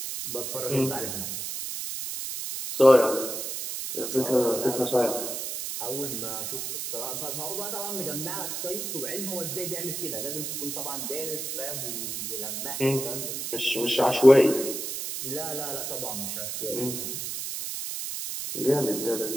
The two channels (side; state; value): right; noise; hiss, 4 dB below the sound